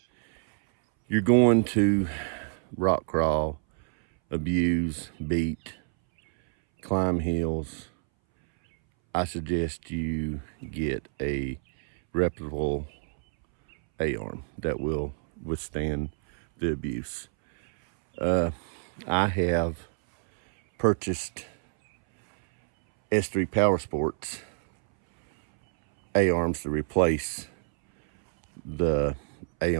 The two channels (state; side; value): silent; left; 60 dB below the other